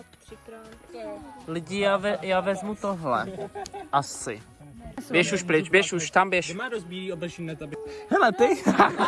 3x. Lidi, já vezmu tohle. Asi. Běž už pryč, běž už, tam běž. má dost bílý oblečení na tobě. Hele ty!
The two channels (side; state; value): both; identical; correlation 1.00